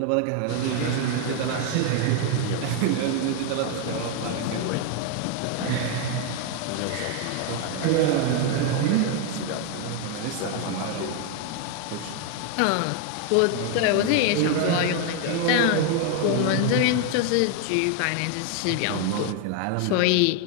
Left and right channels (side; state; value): both; different; correlation 0.01